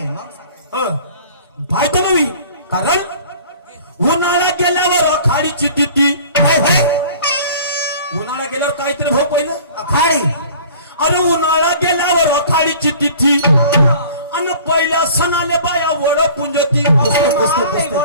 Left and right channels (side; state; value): both; inverted; correlation -0.47